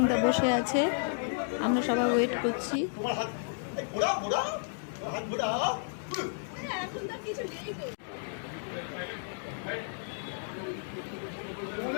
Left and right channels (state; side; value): silent; right; digital silence